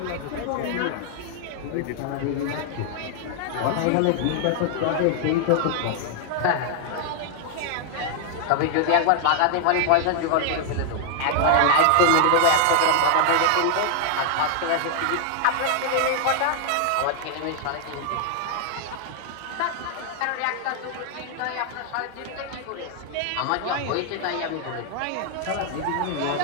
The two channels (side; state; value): both; different; correlation 0.00